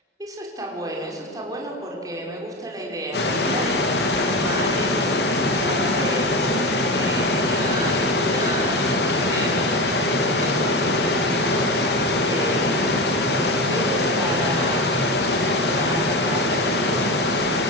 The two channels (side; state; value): both; normal; correlation 0.21